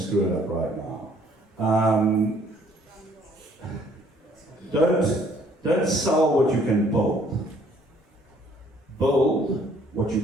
it up right now. Don't sell what you can build. Build what you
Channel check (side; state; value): both; normal; correlation 0.62